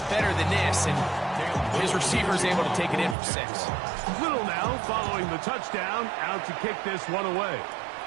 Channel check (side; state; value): left; drops out; at 3.2 s